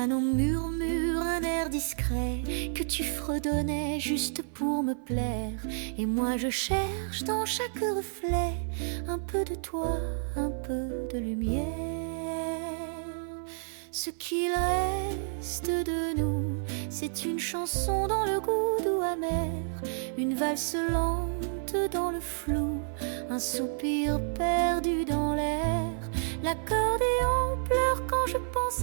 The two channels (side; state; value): left; silent; 58 dB below the other